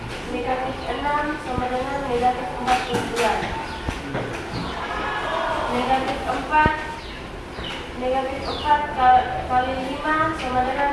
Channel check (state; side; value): identical; both; correlation 1.00